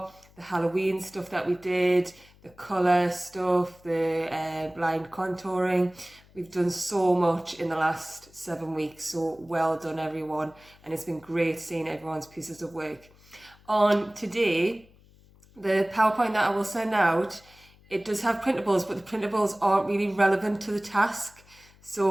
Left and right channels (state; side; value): noise; left; hum, 27 dB below the sound